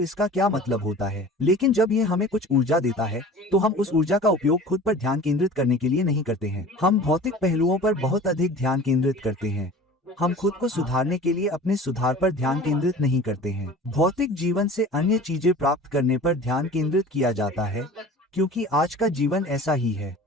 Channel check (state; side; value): normal; both; correlation 0.41